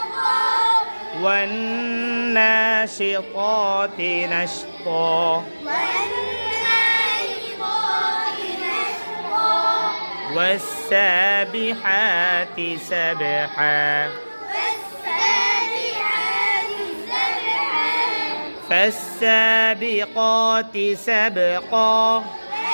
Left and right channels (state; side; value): inverted; both; correlation -1.00